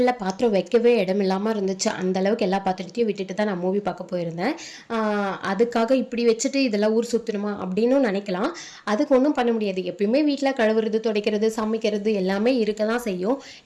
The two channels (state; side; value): identical; both; correlation 1.00